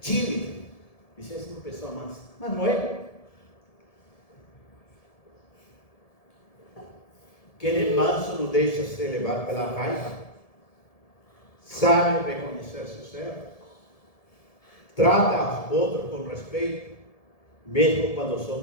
tímido. Isso é uma pessoa mansa, mas não é. Quem é manso não deixa se levar pela raiva, sabe reconhecer seus erros, trata os outros com respeito, mesmo quando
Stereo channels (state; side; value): late; right; 1.7 ms